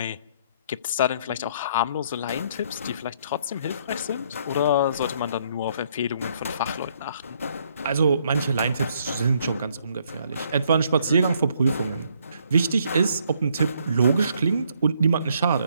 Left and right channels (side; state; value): both; inverted; correlation -0.68